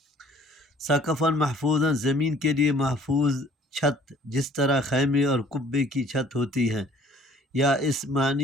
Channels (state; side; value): normal; both; correlation 0.55